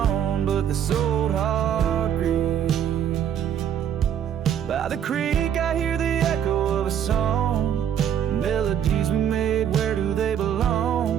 but this old heart grieves. By the creek I hear the echo of a song, melodies we made, where do they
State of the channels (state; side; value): quieter; left; 9.3 dB